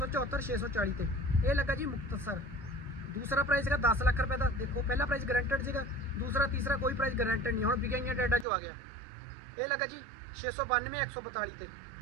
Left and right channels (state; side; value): drops out; left; at 8.5 s